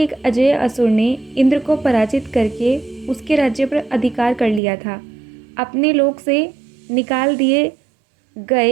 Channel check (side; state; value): left; drops out; at 4.6 s